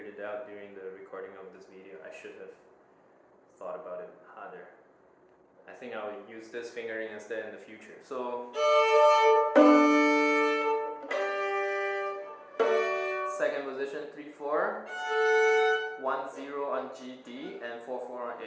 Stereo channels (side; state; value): both; identical; correlation 1.00